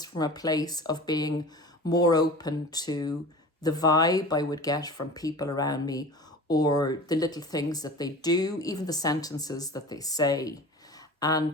from a place of being more open to the vibe I would get from people around me, or the little things that they do, even the sentences that they say.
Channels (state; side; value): normal; both; correlation 0.37